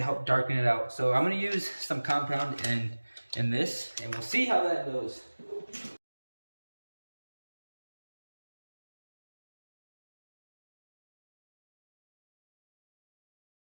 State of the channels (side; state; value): both; inverted; correlation -1.00